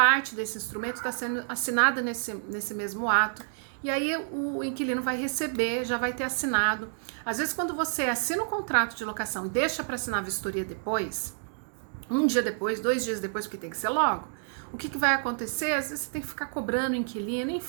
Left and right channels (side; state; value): left; silent; digital silence